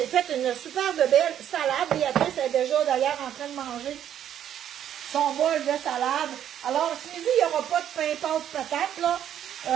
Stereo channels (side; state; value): left; quieter; 10.2 dB